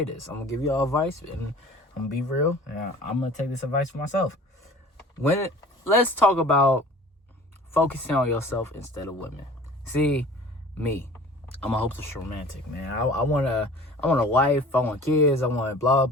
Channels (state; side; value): normal; both; correlation 0.45